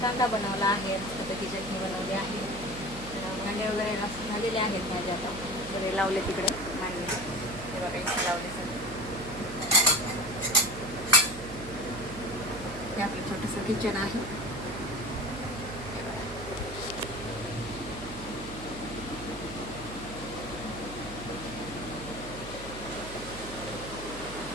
कांदा बनवला आहे, मस्तपैकी चटणी बनवली आहे. तर भांडे वगैरे झालेले आहेत माझे, आता सगळे लावले तिकडे मांडले. हे बघा इथे लावले सगळे. हे आपलं छोटंसं किचन आहे.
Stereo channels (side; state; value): right; noise; hum, 13 dB below the sound